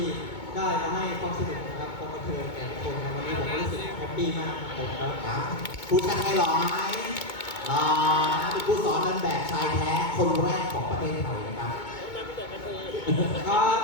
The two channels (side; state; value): right; late; 2.2 ms